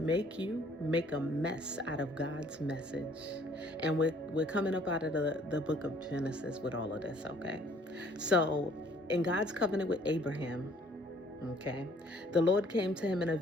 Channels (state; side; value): normal; both; correlation 0.59